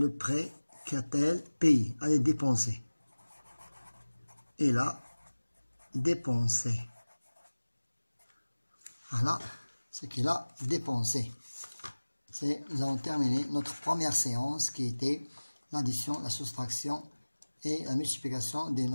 prêt qu'a-t-elle payé, elle a dépensé. Elle a dépensé. Voilà ce qu'elle a dépensé. Nous avons terminé notre première séance qui était l'addition, la soustraction et la multiplication des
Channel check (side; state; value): both; inverted; correlation -1.00